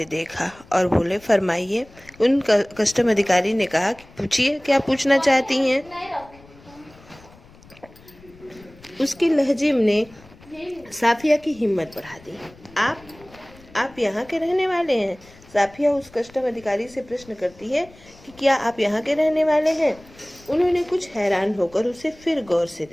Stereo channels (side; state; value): left; noise; rumble, 24 dB below the sound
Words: देखा और बोले, फरमाइए। उन कस्टम अधिकारी ने कहा कि पूछिए, क्या पूछना चाहती हैं। उसके लहजे ने साफिया की हिम्मत बढ़ा दी। आप यहाँ के रहने वाले हैं? साफिया उस कस्टम अधिकारी से प्रश्न करती है कि क्या आप यहाँ के रहने वाले हैं? उन्होंने कुछ हैरान होकर उसे फिर गौर से